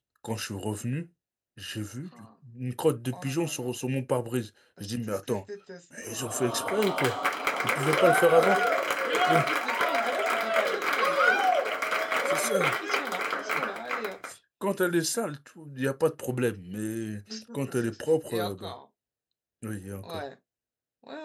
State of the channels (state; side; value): identical; both; correlation 1.00